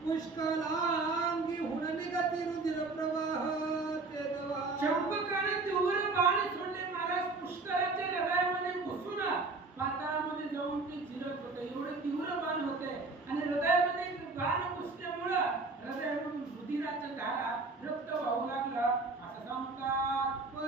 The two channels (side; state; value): left; quieter; 3.7 dB